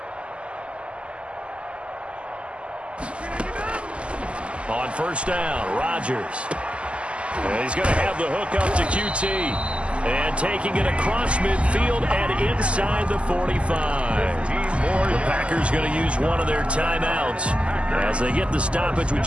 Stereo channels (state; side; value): late; left; 0.056 ms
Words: On first down, Rodgers. And he's going to have the hook up to QT. And taking it across midfield and inside the 45. The Packers going to use one of their timeouts as they get the stoppage with